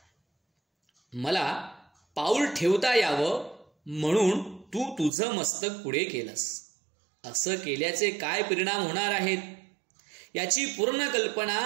मला पाऊल ठेवता यावं म्हणून तू तुझं मस्तक पुढे केलंस. असं केल्याचे काय परिणाम होणार आहेत याची पूर्ण कल्पना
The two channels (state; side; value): drops out; left; at 5.1 s